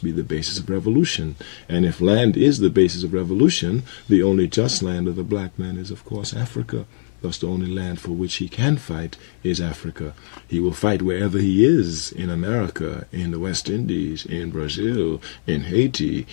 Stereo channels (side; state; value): right; silent; digital silence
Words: be the basis of revolution. And if land is the basis of revolution, the only just land of the black man is, of course, Africa. Thus, the only land for which he can fight is Africa. He will fight wherever he is, in America, in the West Indies, in Brazil, in Haiti,